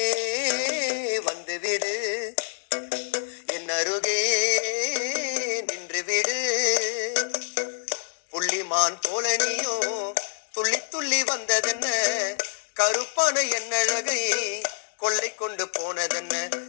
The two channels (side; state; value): right; silent; digital silence